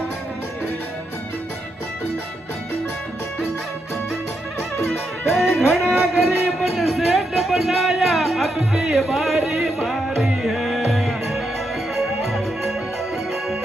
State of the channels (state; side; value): normal; both; correlation 0.82